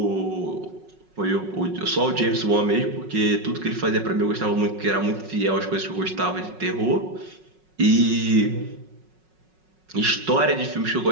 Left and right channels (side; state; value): left; late; 5.4 ms